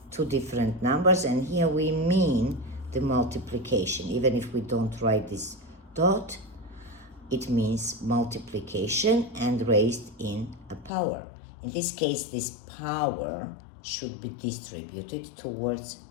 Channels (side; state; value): right; drops out; at 10.9 s